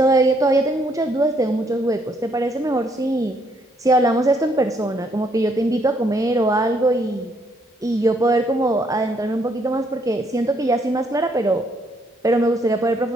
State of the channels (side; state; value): both; normal; correlation 0.70